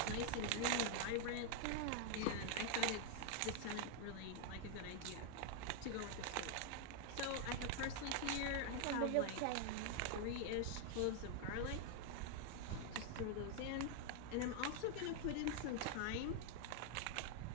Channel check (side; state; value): both; different; correlation 0.00